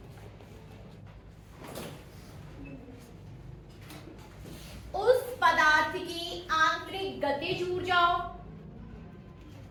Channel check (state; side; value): identical; both; correlation 1.00